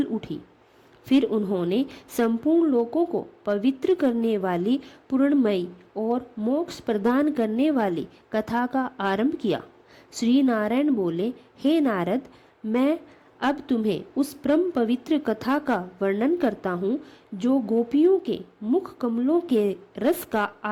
उठी। फिर उन्होंने संपूर्ण लोकों को पवित्र करने वाली पूर्णमयी और मोक्ष प्रदान करने वाली कथा का आरंभ किया। श्री नारायण बोले, हे नारद, मैं अब तुम्हें उस परम पवित्र कथा का वर्णन करता हूँ जो गोपियों के मुख कमलों के रस का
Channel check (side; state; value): both; identical; correlation 1.00